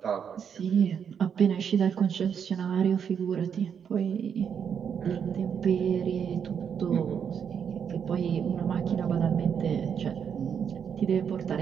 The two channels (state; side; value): quieter; left; 7.5 dB